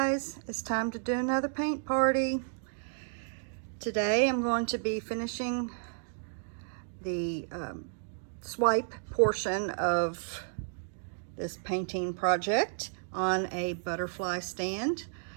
it's time to do another paint party. Today I'm going to be finishing the swipe portion of this painting project on a butterfly stand.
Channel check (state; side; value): silent; left; digital silence